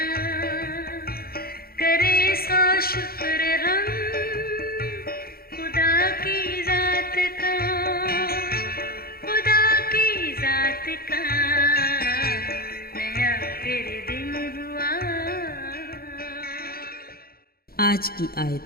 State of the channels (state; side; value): late; right; 0.44 ms